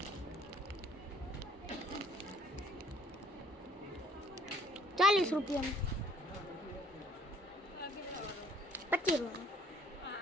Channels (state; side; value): normal; both; correlation 0.59